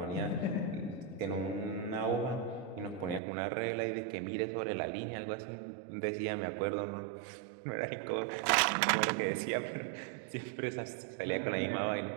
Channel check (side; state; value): left; drops out; at 3.2 s